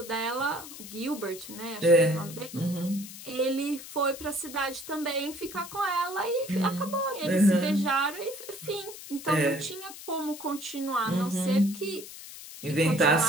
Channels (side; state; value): left; noise; hiss, 13 dB below the sound